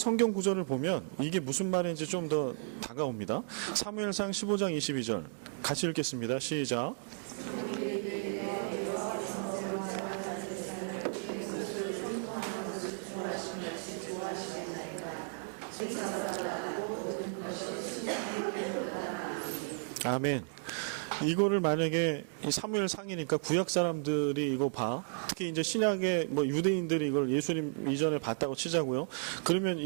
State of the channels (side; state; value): left; silent; 55 dB below the other